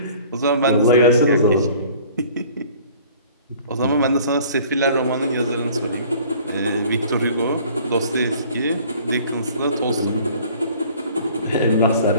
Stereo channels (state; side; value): inverted; both; correlation -0.51